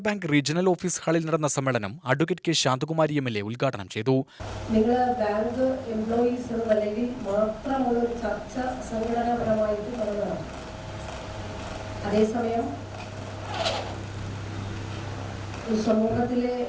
ബാങ്ക് റീജിയണൽ ഓഫീസ് ഹാളിൽ നടന്ന സമ്മേളനം അഡ്വക്കേറ്റ് കെ ശാന്തകുമാരി MLA ഉദ്ഘാടനം ചെയ്തു. നിങ്ങൾ ബാങ്ക് എംപ്ലോയീസ് അല്ലെങ്കിൽ മാത്രമുള്ള ഒരു ചർച്ച സംഘടനാപരമായിട്ട് നടന്നതാണ്. അതേസമയം സമൂഹത്തിലെ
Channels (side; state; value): both; identical; correlation 1.00